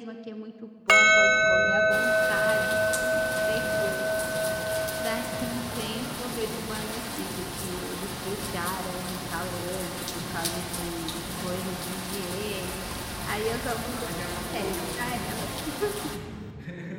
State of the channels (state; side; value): identical; both; correlation 1.00